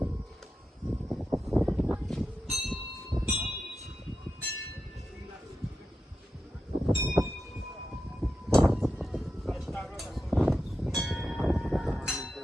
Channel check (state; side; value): normal; both; correlation 0.89